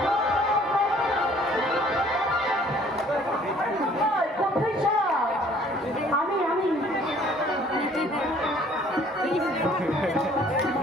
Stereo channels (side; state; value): both; normal; correlation 0.57